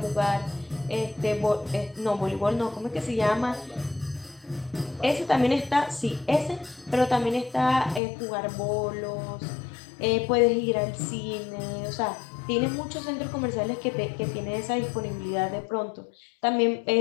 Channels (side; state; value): right; drops out; at 8.0 s